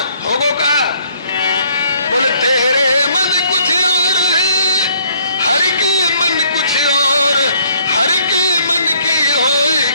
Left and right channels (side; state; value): both; inverted; correlation -0.62